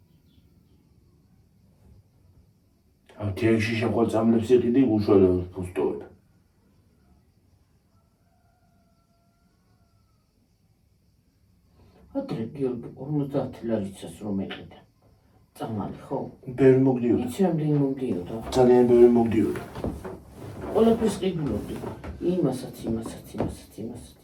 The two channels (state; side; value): identical; both; correlation 1.00